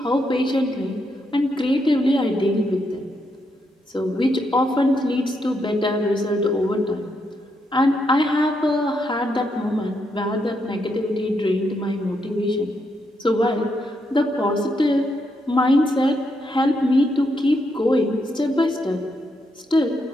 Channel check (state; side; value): normal; both; correlation 0.80